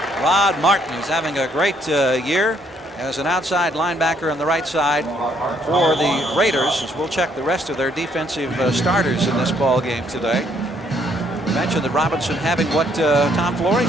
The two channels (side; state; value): both; normal; correlation 0.69